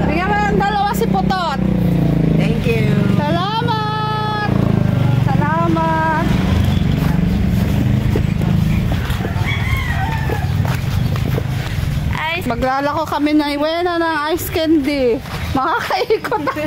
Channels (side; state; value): both; identical; correlation 1.00